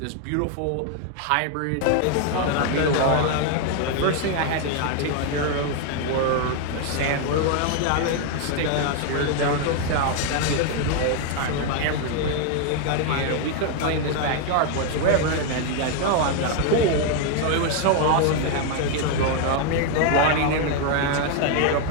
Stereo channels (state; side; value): different; both; correlation 0.00